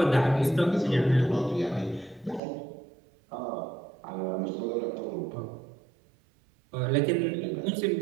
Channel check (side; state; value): left; drops out; at 2.4 s